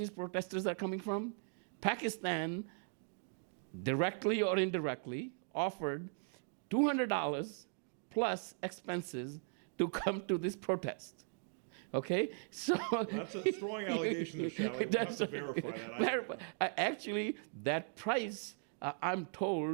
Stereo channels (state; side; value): silent; left; 52 dB below the other